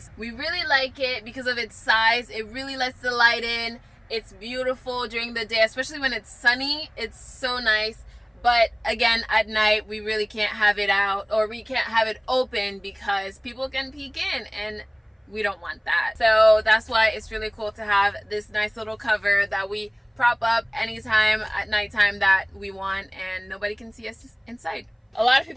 We really like it because of its size. It really lets the light in. It's beautiful during the day, especially when it's sunny. It's so nice. But again, at night, we really can't have it out, or we can't have it open because people can peek in, and we don't want that. So that's why it's really cool to have this nice little cover that we prop up anytime at nighttime that we want, and nobody can see us inside. A lot of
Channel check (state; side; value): identical; both; correlation 1.00